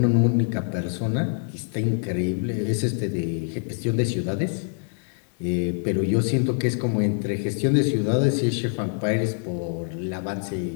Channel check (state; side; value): silent; right; 57 dB below the other